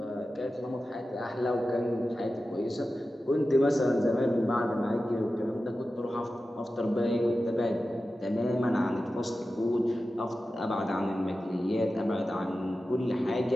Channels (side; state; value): both; normal; correlation 0.93